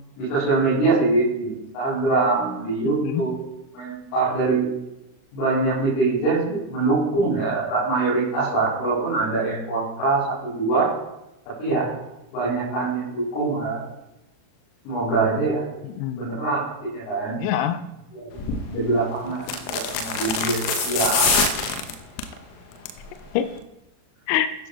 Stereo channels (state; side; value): late; right; 40 ms